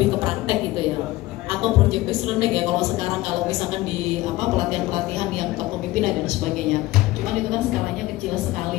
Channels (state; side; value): quieter; right; 18.4 dB